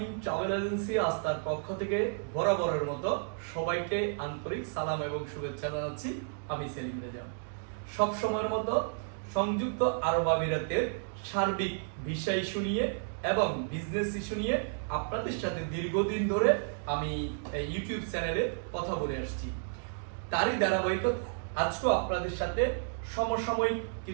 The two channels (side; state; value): left; silent; digital silence